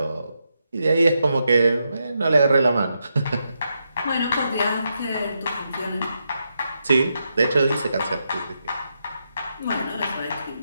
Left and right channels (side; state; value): both; inverted; correlation -0.83